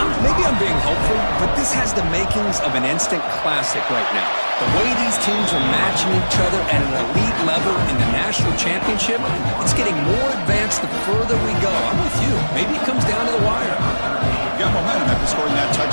maybe I'm being hopeful, but this has the makings of an instant classic right now. The way these teams are matching each other at an elite level in the national championship, it's getting more advanced the further we go. I'm with you. Maybe it comes down to the wire. Got momentum after scoring that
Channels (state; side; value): inverted; both; correlation -1.00